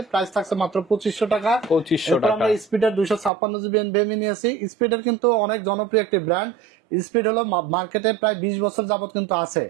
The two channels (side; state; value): left; drops out; at 3.3 s